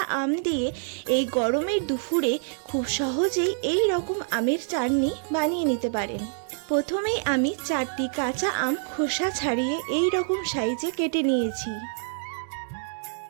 আম দিয়ে এই গরমের দুপুরে খুব সহজেই এই রকম আমের চাটনি বানিয়ে নিতে পারেন। প্রথমেই আমি 4টি কাঁচা আম খোসা ছাড়িয়ে এই রকম সাইজে কেটে নিয়েছি।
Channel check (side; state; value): left; silent; 61 dB below the other